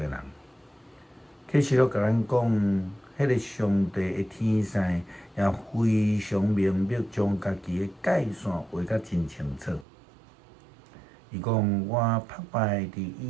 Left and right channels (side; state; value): left; drops out; at 9.9 s